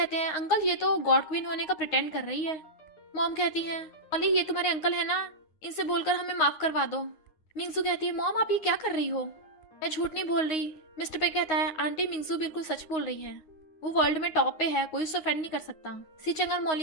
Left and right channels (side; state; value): right; late; 9.5 ms